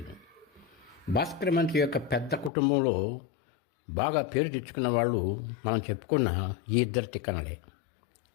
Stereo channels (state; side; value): drops out; right; at 2.5 s